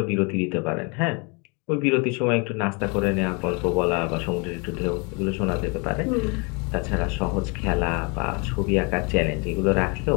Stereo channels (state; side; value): quieter; right; 31.8 dB